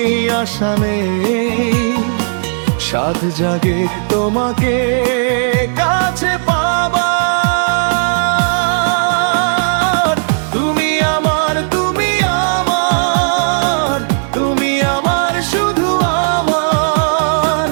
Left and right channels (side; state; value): left; silent; digital silence